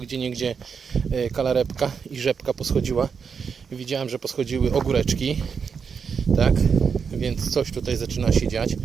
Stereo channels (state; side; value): quieter; left; 6.2 dB